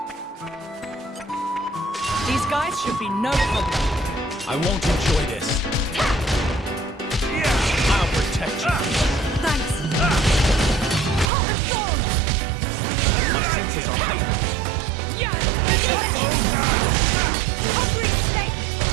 These guys should be no problem. I won't enjoy this. I'll protect you. Thanks. My senses are heightened. Hungry snake.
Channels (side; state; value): left; drops out; at 11.3 s